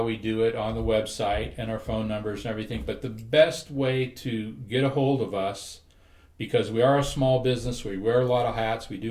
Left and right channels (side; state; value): both; identical; correlation 1.00